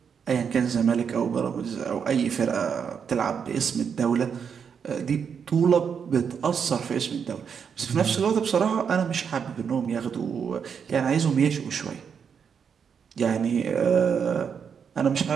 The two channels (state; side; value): quieter; left; 6.9 dB